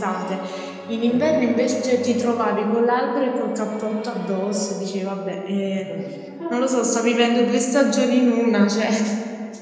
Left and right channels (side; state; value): both; identical; correlation 1.00